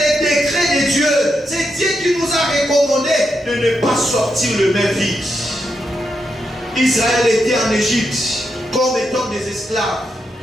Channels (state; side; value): normal; both; correlation 0.83